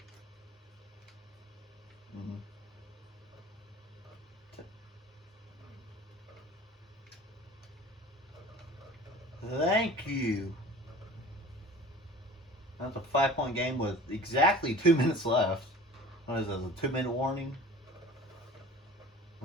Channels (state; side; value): normal; both; correlation 0.42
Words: Mm-hmm. Thank you. That's a 5-point game with exactly 2 minutes left. What is this, a 2-minute warning?